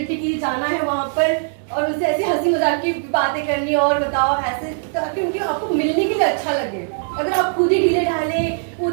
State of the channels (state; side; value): silent; left; digital silence